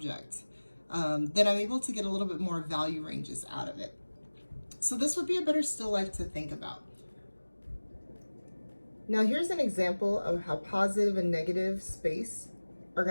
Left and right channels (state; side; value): inverted; both; correlation -1.00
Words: then I'm able to get a little bit more value ranges out of it. So this would be a better still life to think about. Now here's an example of how positive and negative space are